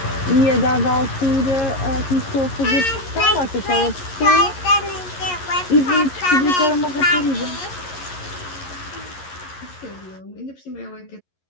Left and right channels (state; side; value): late; right; 11 ms